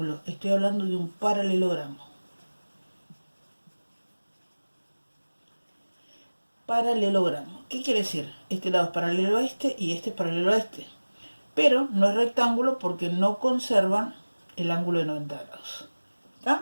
estoy hablando de un paralelogramo. Paralelogramo. ¿Qué quiere decir? Este lado es paralelo a este y este es paralelo a este. Pero no es rectángulo porque no conservan el ángulo de 90 grados.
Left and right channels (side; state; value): both; inverted; correlation -1.00